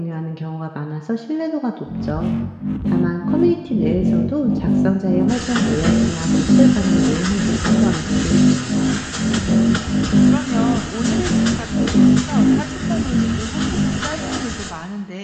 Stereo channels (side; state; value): both; identical; correlation 1.00